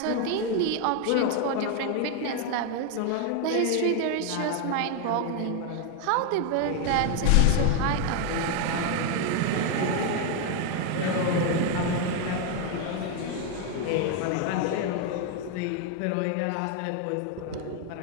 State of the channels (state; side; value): different; both; correlation 0.01